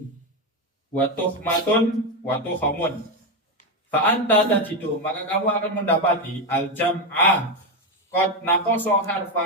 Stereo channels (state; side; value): normal; both; correlation 0.09